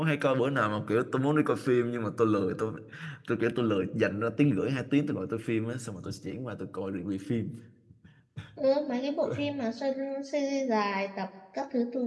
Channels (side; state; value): both; identical; correlation 1.00